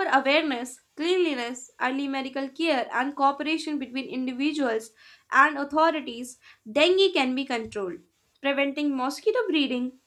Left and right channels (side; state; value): both; identical; correlation 1.00